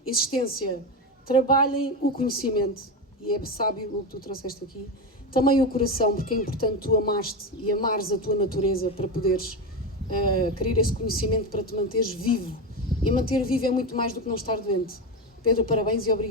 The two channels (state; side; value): normal; both; correlation 0.17